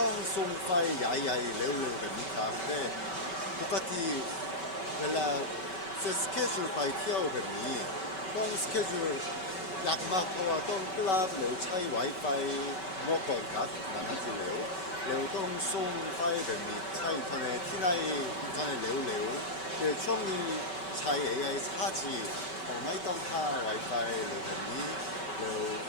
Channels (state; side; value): late; right; 5.2 ms